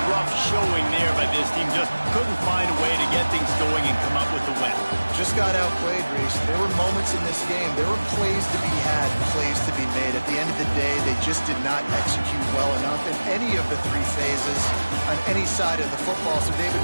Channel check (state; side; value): inverted; both; correlation -1.00